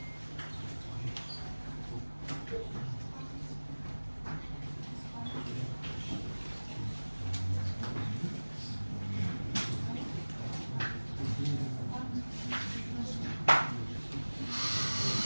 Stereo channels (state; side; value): inverted; both; correlation -1.00